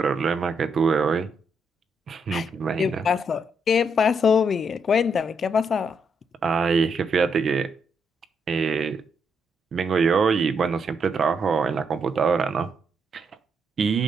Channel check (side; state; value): both; normal; correlation 0.77